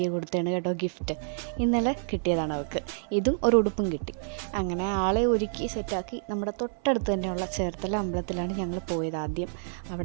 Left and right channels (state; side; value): silent; left; 59 dB below the other